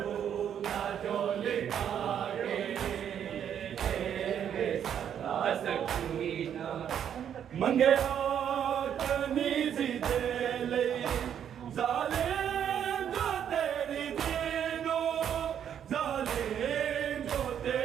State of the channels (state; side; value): quieter; left; 9.1 dB